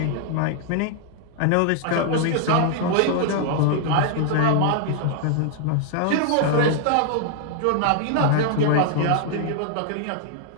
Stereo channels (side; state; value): both; different; correlation 0.00